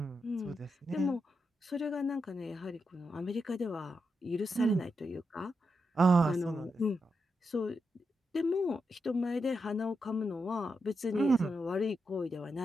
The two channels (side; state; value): both; normal; correlation 0.85